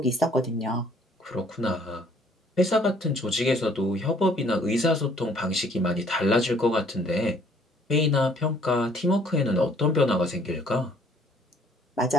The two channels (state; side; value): normal; both; correlation 0.60